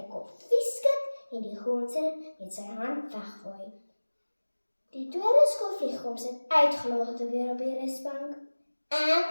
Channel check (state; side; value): inverted; both; correlation -1.00